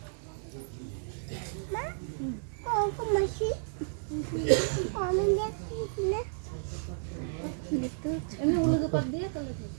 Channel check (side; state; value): left; silent; 56 dB below the other